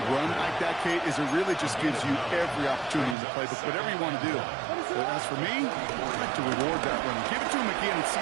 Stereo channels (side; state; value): left; drops out; at 3.2 s